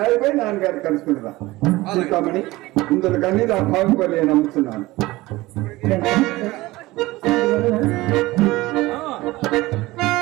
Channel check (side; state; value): left; quieter; 19.4 dB